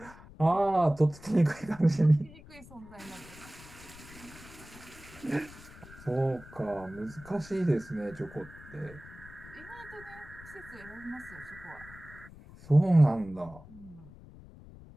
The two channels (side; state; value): left; noise; rumble, 19 dB below the sound